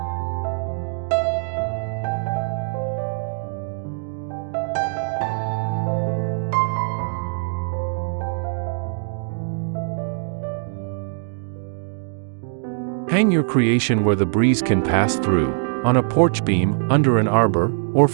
Hang your creation where the breeze can pass through, on a porch beam, under an arbor, or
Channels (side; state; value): left; silent; digital silence